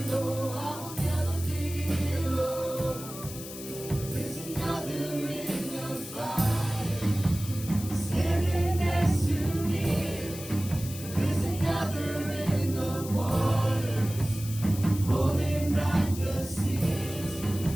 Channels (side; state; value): left; noise; hiss, 12 dB below the sound